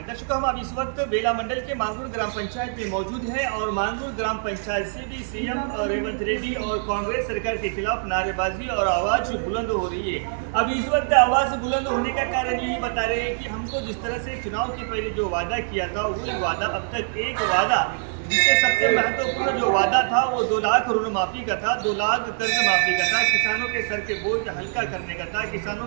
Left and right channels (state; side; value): silent; left; 62 dB below the other